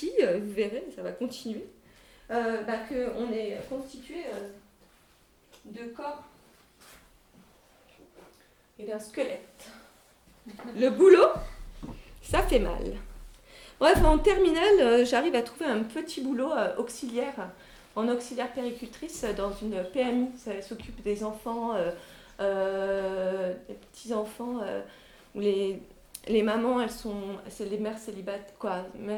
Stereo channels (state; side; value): identical; both; correlation 1.00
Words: vous verrez, ça va continuer, qu'on est constitué de corps et d'un squelette. Le boulot, ça fait mal. Bref, en terminale, j'arrive à trouver un petit boulot auxiliaire, en auxiliaire péricultrice dans une PMI. Ça s'occupe des enfants, des petits-enfants, où les mamans, c'est les mères célibataires,